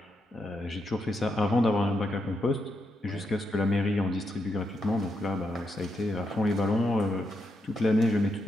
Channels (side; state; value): both; normal; correlation 0.82